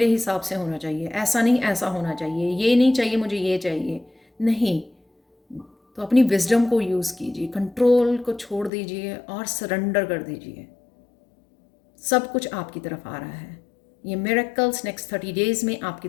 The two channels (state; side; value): drops out; right; at 8.7 s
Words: हिसाब से होना चाहिए, ऐसा नहीं ऐसा होना चाहिए, ये नहीं चाहिए मुझे ये चाहिए, नहीं। तो अपनी विजडम को यूज़ कीजिए, कंट्रोल को छोड़ दीजिए और सरेंडर कर दीजिए, सब कुछ आपकी तरफ आ रहा है। ये मिरेकल्स नेक्स्ट 30 डेज में आपकी